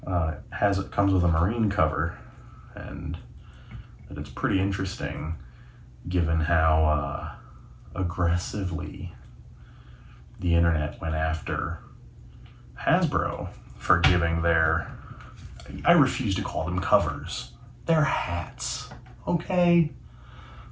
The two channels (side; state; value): both; identical; correlation 1.00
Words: comes with a Marine cover, and that it's pretty interesting given how aggressively the internet went after Hasbro for giving their, I refuse to call them covers, they're hats, okay?